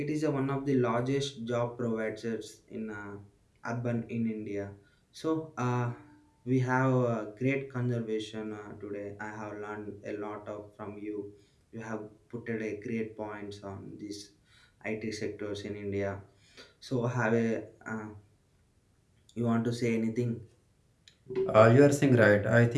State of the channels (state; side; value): identical; both; correlation 1.00